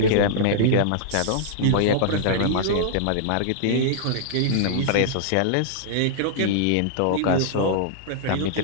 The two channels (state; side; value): different; both; correlation -0.02